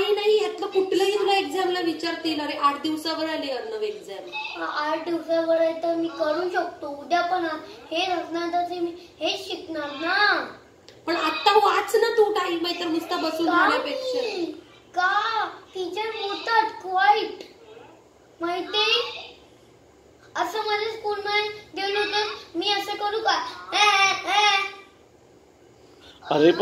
नाही. ह्यातलं कुठलंही तुला एक्झामला विचारतील. अरे 8 दिवसावर आली अर्णव एक्झाम. 8 दिवसावर आहे तर मी करू शकतो. उद्या पण हे असणार तर मी हेच शिकणार ना. पण आता वाच ना तू. टाइम आहे तर नुसता बसून राहण्यापेक्षा. का टीचर बोलतात क्वाईट माहिती. असं माझ्या स्कूलमध्ये गेलो तर मी असं करू का? अरे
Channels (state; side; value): identical; both; correlation 1.00